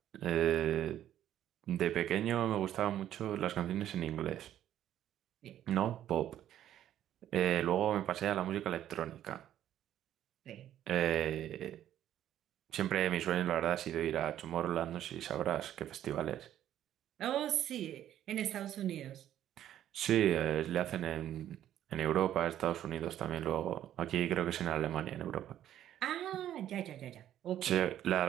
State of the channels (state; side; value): quieter; left; 11.5 dB